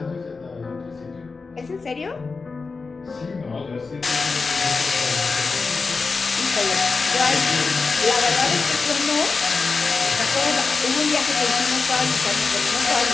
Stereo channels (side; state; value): right; quieter; 4.4 dB